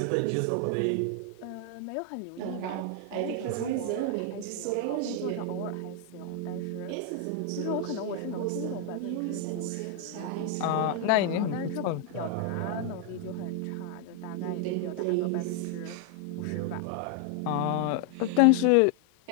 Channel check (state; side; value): different; both; correlation 0.00